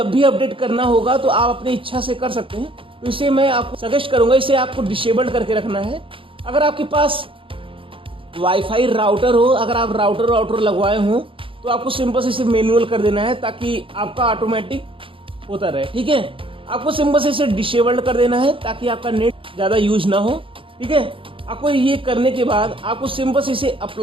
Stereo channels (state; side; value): late; left; 0.25 ms